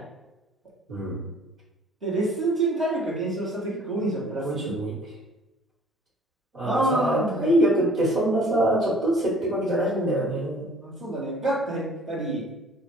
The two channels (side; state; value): both; normal; correlation 0.53